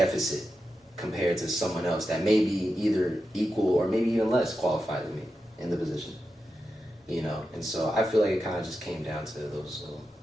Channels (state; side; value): normal; both; correlation 0.89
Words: compared to someone else that may be either equal or maybe even less qualified than me in the position. And so I feel like it kind of just came down to those little